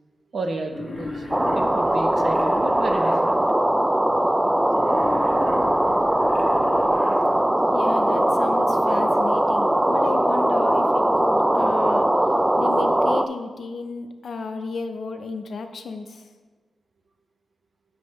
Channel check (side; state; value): both; normal; correlation 0.97